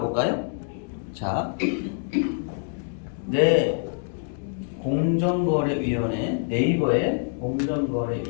볼까요? 자, 공정거래위원회, 네이버에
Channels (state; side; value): silent; right; 61 dB below the other